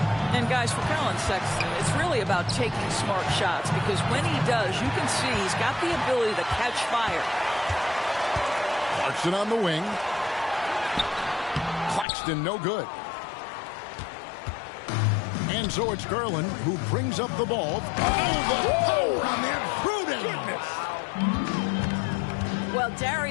And guys, for Colin Sexton, it's really about taking smart shots, because when he does, you can see he's got the ability to catch fire. Clarkson on the wing. Claxton no good. And so it's Garland who brings up the ball. Oh, the power on that Pruden. Well,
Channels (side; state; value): right; drops out; at 12.1 s